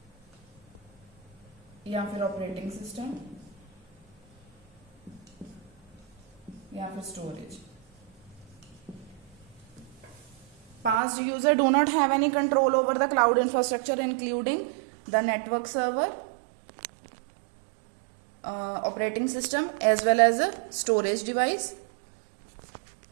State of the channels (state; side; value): drops out; left; at 11.0 s